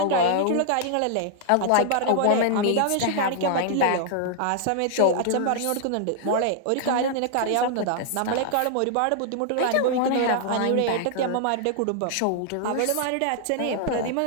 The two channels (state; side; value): different; both; correlation -0.01